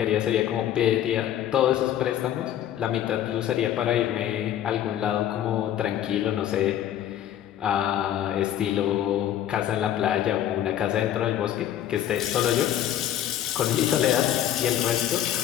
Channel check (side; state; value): right; quieter; 11.4 dB